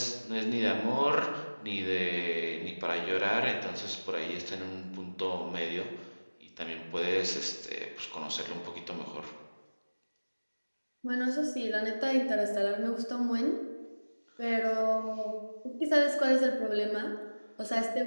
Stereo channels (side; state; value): both; inverted; correlation -1.00